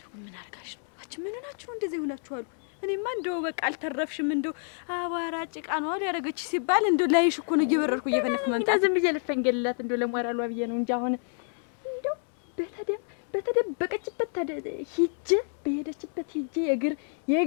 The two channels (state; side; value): silent; right; 59 dB below the other